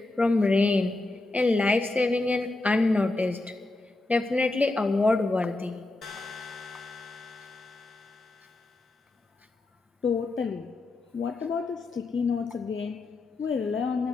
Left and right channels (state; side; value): quieter; right; 3.0 dB